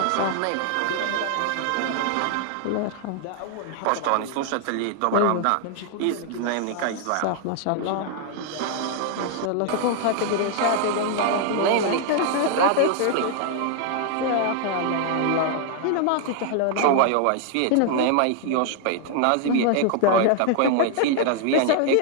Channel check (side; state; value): both; different; correlation 0.00